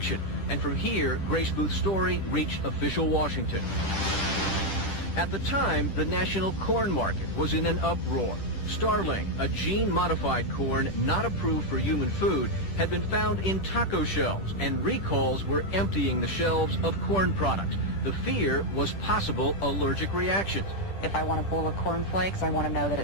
And from here, Grace Booth's story reached official Washington. At the time, the national corn market was in an uproar. Starling, a gene-modified corn not approved for human food, had been found in taco shells, and recalls were emptying the shelves of corn products. The fear was possible allergic reactions. If I want a bowl of cornflakes, I want to know that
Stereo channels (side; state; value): right; late; 10 ms